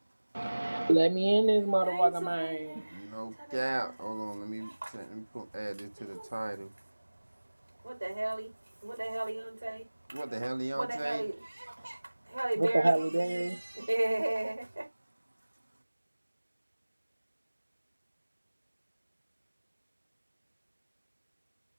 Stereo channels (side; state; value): both; inverted; correlation -1.00